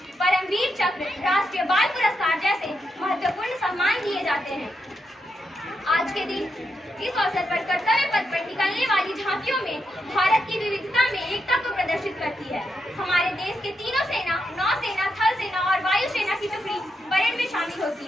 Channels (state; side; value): normal; both; correlation 0.83